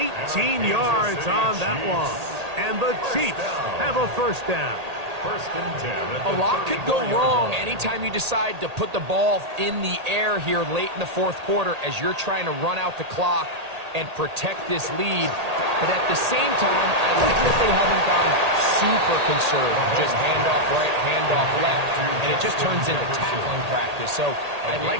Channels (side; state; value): left; late; 1.8 ms